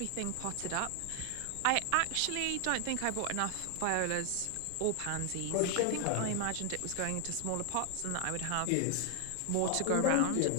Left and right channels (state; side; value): different; both; correlation 0.00